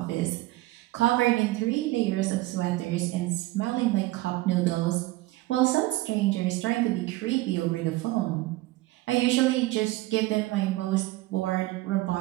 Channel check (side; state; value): left; quieter; 18.7 dB